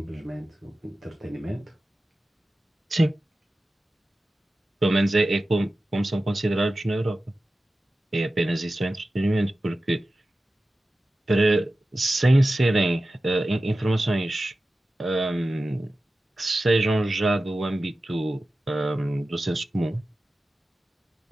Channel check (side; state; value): both; normal; correlation 0.95